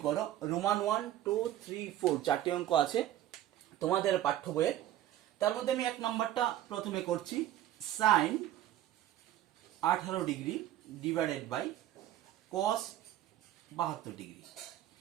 করো। রোমান 1 2 3 4 চারটি অঙ্ক আছে তোমাদের পাঠ্য বইয়ে। তার মধ্যে আমি 1 নাম্বারটা প্রথমে করছি, sin 18 degree divided by cos 72 degree.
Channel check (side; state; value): left; quieter; 12.8 dB